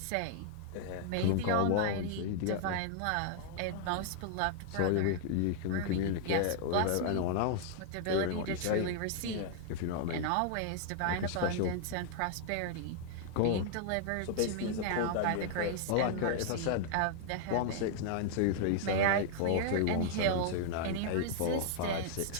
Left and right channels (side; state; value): both; different; correlation -0.01